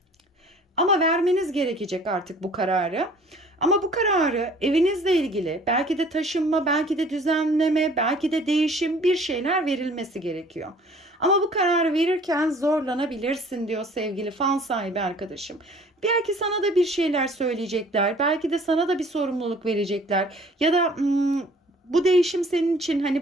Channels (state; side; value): normal; both; correlation 0.52